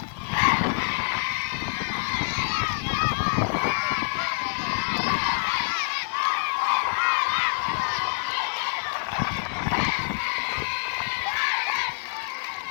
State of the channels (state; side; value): silent; right; 59 dB below the other